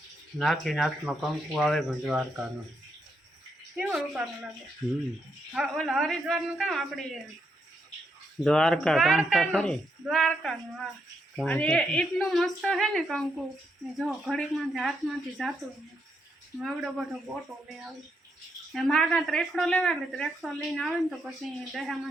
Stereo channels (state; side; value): normal; both; correlation 0.79